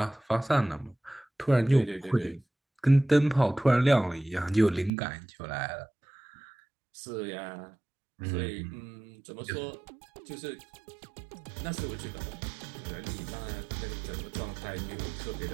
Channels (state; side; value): drops out; left; at 4.9 s